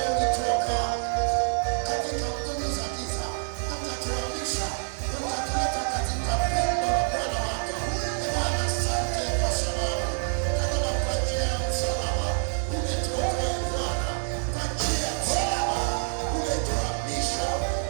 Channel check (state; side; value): silent; left; 58 dB below the other